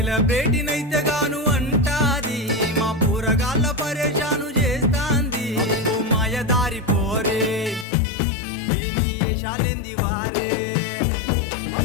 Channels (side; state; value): right; drops out; at 7.9 s